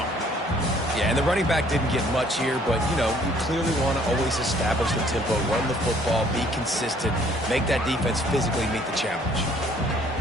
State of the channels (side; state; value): both; normal; correlation 0.60